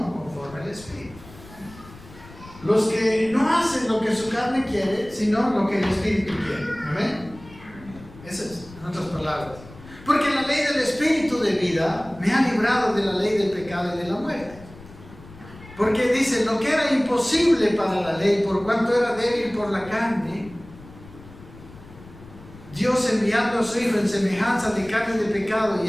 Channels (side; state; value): left; noise; rumble, 19 dB below the sound